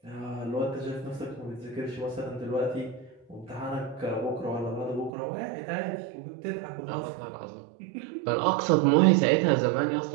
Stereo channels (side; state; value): left; drops out; at 5.1 s